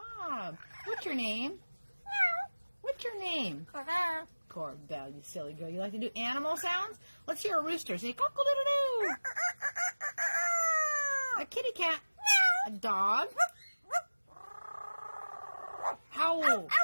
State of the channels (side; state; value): both; inverted; correlation -1.00